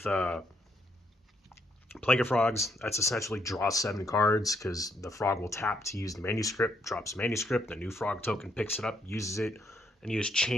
Plague of Frogs. That's essentially draw 7 cards because the frog will tap to use the manuscript, drops manuscript, the new frog token picks it up, uses it, and you just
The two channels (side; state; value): both; normal; correlation 0.74